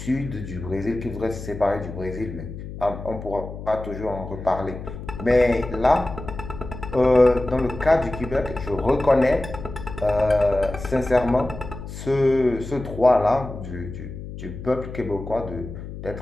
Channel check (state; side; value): noise; left; hum, 10 dB below the sound